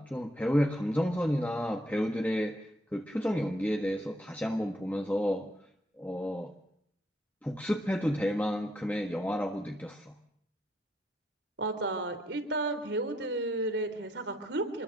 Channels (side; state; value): both; normal; correlation 0.74